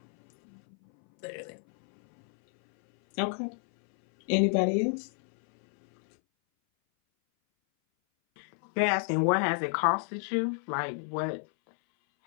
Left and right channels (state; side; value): silent; right; 58 dB below the other